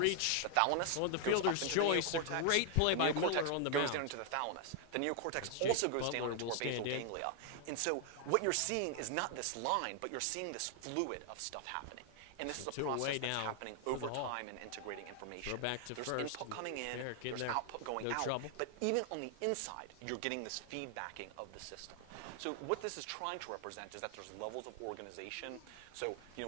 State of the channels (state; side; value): different; both; correlation 0.00